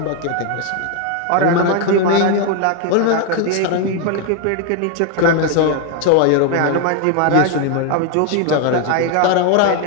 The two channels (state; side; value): different; both; correlation 0.01